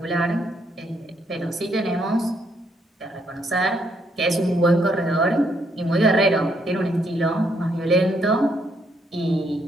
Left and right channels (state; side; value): normal; both; correlation 0.73